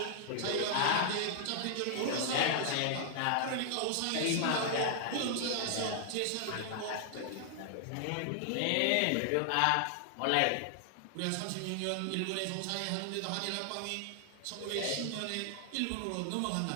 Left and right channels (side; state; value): both; different; correlation 0.00